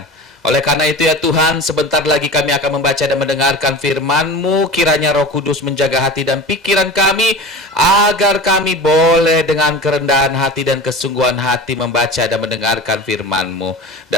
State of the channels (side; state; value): both; normal; correlation 0.32